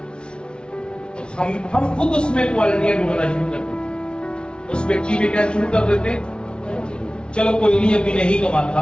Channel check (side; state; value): right; late; 0.056 ms